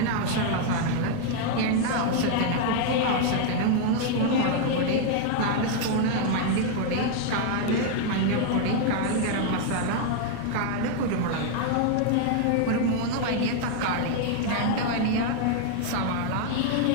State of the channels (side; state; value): both; different; correlation 0.00